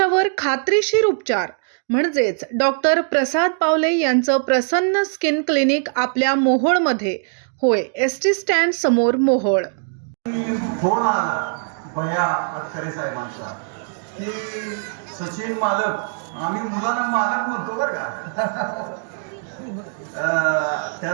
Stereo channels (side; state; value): left; silent; digital silence